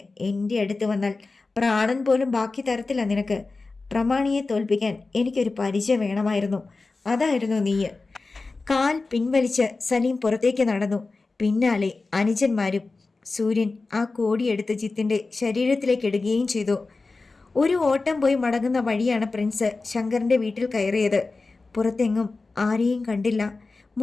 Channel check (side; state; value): right; quieter; 3.7 dB